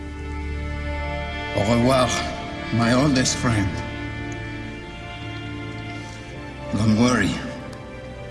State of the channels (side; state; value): both; identical; correlation 1.00